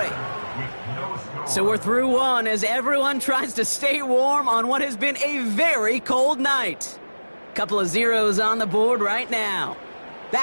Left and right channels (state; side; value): inverted; both; correlation -1.00